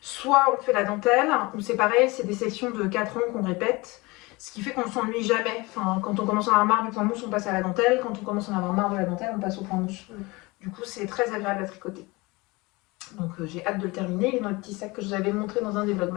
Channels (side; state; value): right; quieter; 23.7 dB